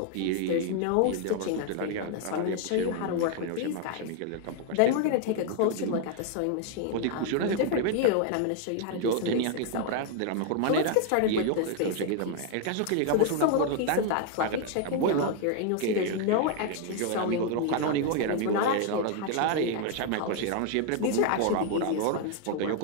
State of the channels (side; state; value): both; different; correlation 0.00